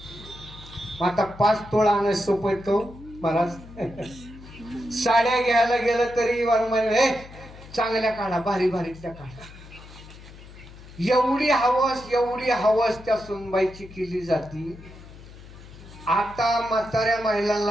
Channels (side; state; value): left; noise; hum, 18 dB below the sound